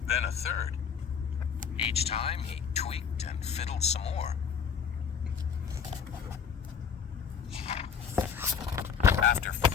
then a third. Each time he tweaked and fiddled some more. After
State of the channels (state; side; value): quieter; right; 6.8 dB